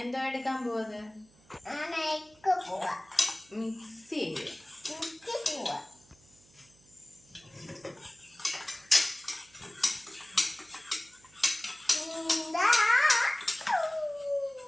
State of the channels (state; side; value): noise; right; hum, 29 dB below the sound